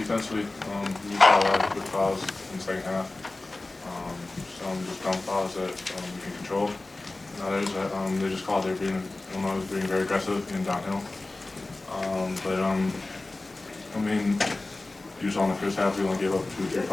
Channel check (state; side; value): quieter; right; 3.1 dB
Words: We saw a lot of good fouls in the second half. Some just dumb fouls that we can control. And others that they just called. They were being, Illinois was being very aggressive and downhill. I mean, you saw in the first half we only gave up 2 or 3